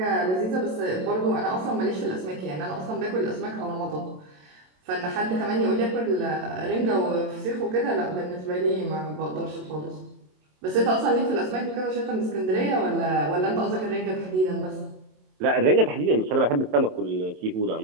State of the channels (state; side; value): late; left; 27 ms